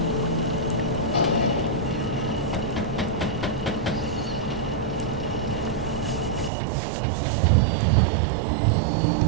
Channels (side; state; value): left; drops out; at 6.5 s